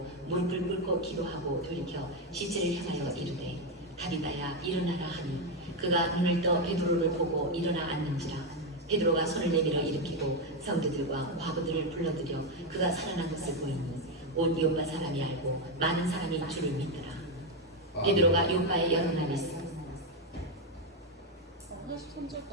무릎을 꿇고 기도하고 돌이켜 시체를 향하여 이르되 다비다야 일어나라 하니 그가 눈을 떠 베드로를 보고 일어나 앉는지라. 베드로가 손을 내밀어 일으키고 성도들과 과부들을 불러들여 그가 살아난 것을 보이니 온 요파 사람이 알고 많은 사람이 주를 믿더라. 베드로가 요파에 여러 날 있어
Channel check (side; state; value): both; normal; correlation 0.06